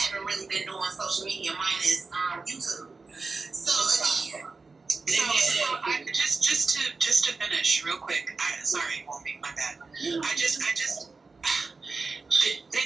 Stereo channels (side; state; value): left; quieter; 4.1 dB